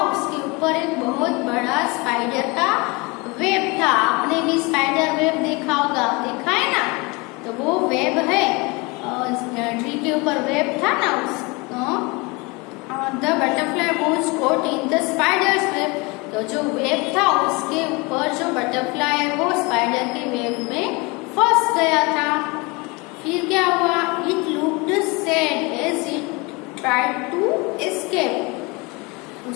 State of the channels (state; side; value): quieter; right; 26.7 dB